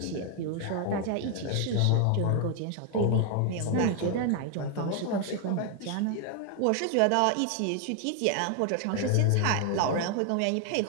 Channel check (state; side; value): different; both; correlation 0.00